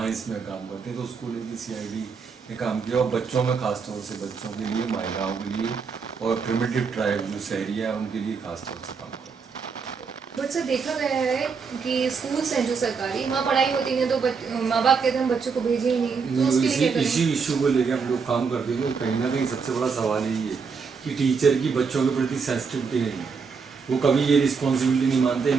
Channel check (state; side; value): quieter; left; 5.4 dB